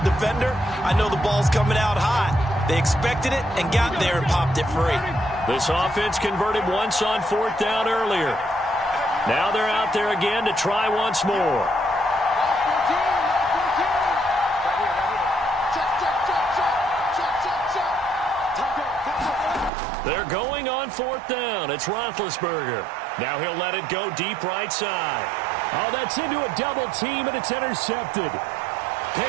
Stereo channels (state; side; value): drops out; left; at 19.7 s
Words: defender, I know the ball's coming out hot. They expected it and got there and popped it free. This offense converted once on 4th down earlier. Now they're out there again to try once more. They're going on 4th down. It's Roethlisberger. Now he'll let it go deep right side. Oh, that's into a double team, and it's intercepted.